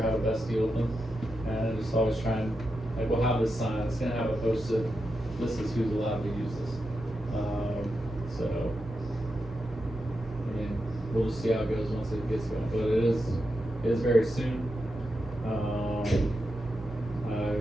how to best deal with them. And just always try and, like, we'll have this sign, it's gonna have it posted, this is who's allowed to use this. So, I mean, we'll just see how it goes once it gets going, but it is very soon.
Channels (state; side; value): normal; both; correlation 0.87